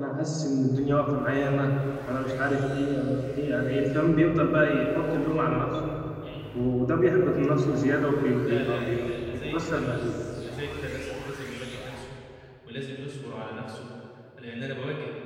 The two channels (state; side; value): identical; both; correlation 1.00